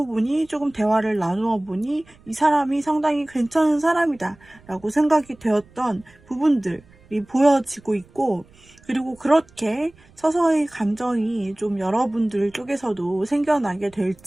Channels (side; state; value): right; noise; rumble, 28 dB below the sound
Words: 보니 조금 대화를 나누어 보니 이 사람이 상당히 괜찮은 사람이다 라고 생각이 되었던 부분들이 보여지고 있고, 그리고 그렇게 서서히 감정이 좀 여러분들 쪽에서도 생겨나게 될